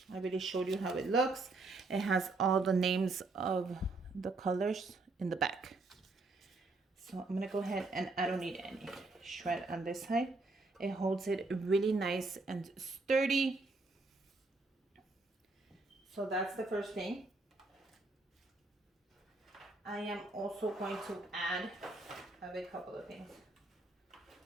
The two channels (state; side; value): quieter; left; 3.4 dB